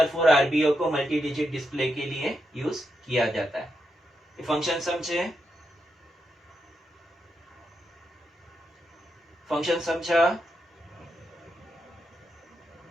4 आरबीओ को मल्टी डिजिट डिस्प्ले के लिए यूज किया जाता है। ये फंक्शन समझे? फंक्शन समझा?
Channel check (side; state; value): both; normal; correlation 0.84